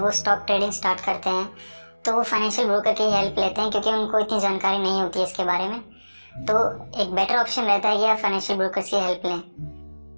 स्टॉक ट्रेडिंग स्टार्ट करते हैं तो वो फाइनेंशियल ब्रोकर की हेल्प लेते हैं क्योंकि उनको इतनी जानकारी नहीं होती है इसके बारे में। तो एक बेटर ऑप्शन रहता है कि आप फाइनेंशियल ब्रोकर्स की हेल्प लें।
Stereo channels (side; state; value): both; inverted; correlation -1.00